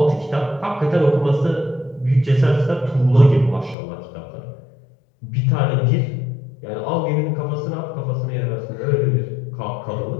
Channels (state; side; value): drops out; right; at 3.8 s